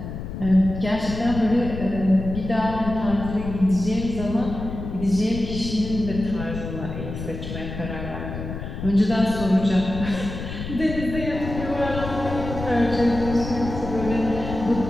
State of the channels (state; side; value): noise; left; rumble, 8 dB below the sound